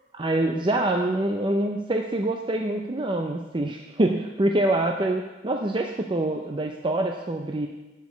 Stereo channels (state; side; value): normal; both; correlation 0.62